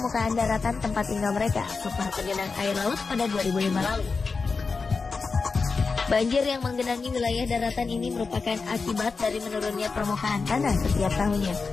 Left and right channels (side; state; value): right; quieter; 4.6 dB